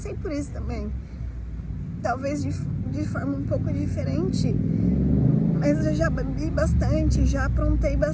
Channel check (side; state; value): both; identical; correlation 1.00